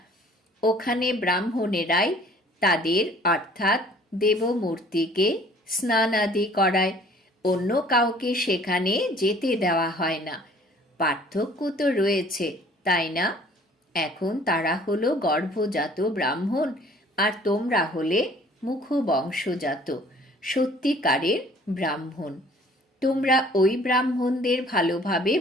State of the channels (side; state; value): both; normal; correlation 0.53